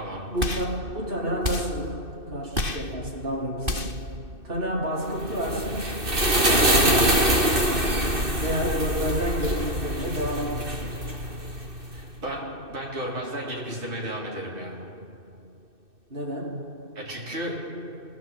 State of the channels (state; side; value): late; left; 2.6 ms